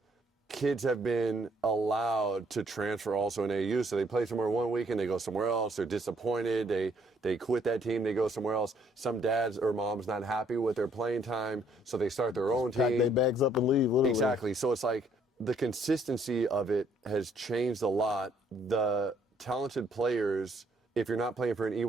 kids have been allowed to transfer also in AAU. So they play somewhere one week and they go somewhere else. They're disappointed. They quit that team. They go somewhere else. Some dads or moms not happy with their playing time, so they start their own team. Pack their bags up and leave, literally. Exactly. So it's like the consistency of it has changed a lot. The talented players, if you're not playing for an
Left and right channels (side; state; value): both; normal; correlation 0.66